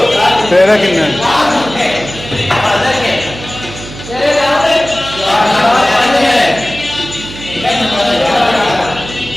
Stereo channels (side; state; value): right; noise; hum, 13 dB below the sound